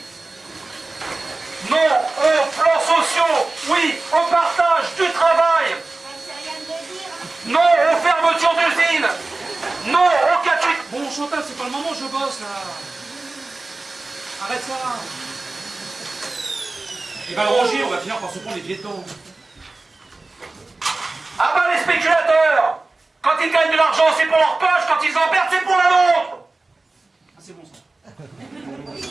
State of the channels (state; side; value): quieter; left; 3.3 dB